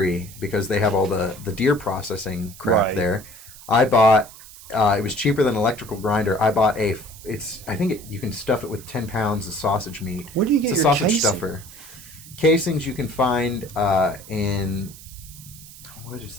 because they have all the deer processing crap there. I bought, it was cheaper than an electrical grinder. I bought you can stuff it with 10 pounds of sausage meat. Where do you get it's a your sausage casing? Stuffer. Casings you can find in, what is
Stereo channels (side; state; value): right; noise; hiss, 18 dB below the sound